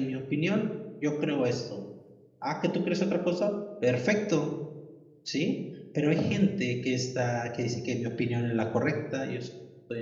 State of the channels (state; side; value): identical; both; correlation 1.00